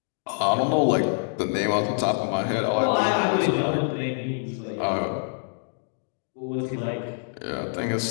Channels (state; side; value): silent; right; digital silence